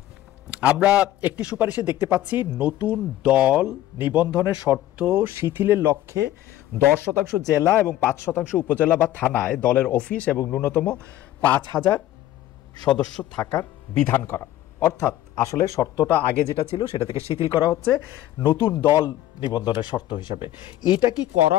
আমরা একটি সুপারিশে দেখতে পাচ্ছি নতুন দল নিবন্ধনের শর্ত শিথিলের লক্ষ্যে 10% জেলা এবং 5% উপজেলা বা থানায় দলের অফিস এবং ন্যূনতম 5,000 সদস্য থাকার বিধান করা। অর্থাৎ আসলে শর্তটা আগে যেটা ছিল সেটা থেকে শিথিল করা হচ্ছে নতুন দল নিবন্ধনের শর্ত হিসেবে। এটা কি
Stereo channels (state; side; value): quieter; right; 13.8 dB